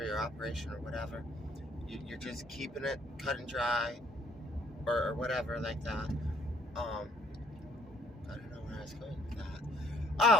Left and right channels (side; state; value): both; normal; correlation 0.64